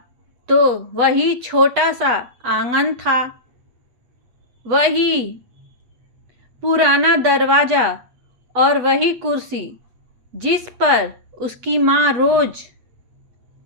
तो वही छोटा सा आंगन था, वही पुराना दरवाज़ा और वही कुर्सी जिस पर उसकी माँ रोज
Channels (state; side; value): late; left; 8.2 ms